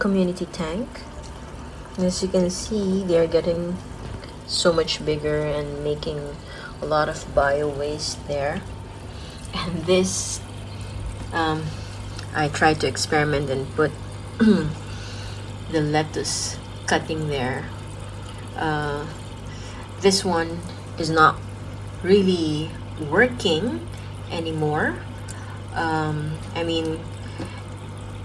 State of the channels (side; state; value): both; identical; correlation 1.00